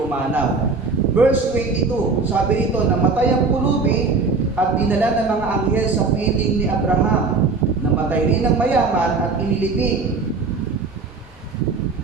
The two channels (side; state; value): left; quieter; 4.2 dB